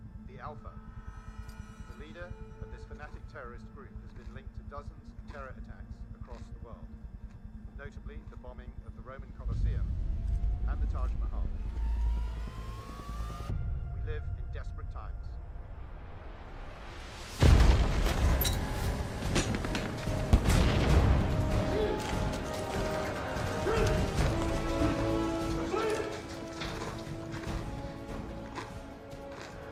the Alpha. The leader of this fanatic terrorist group has been linked to dozens of terror attacks across the world, notably the bombing of the Roman Colosseum and the Taj Mahal. We live in desperate times.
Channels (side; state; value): both; identical; correlation 1.00